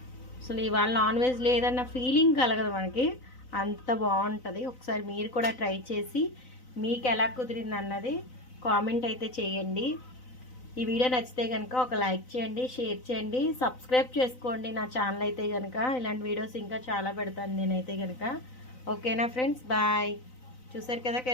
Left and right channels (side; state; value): right; late; 4.0 ms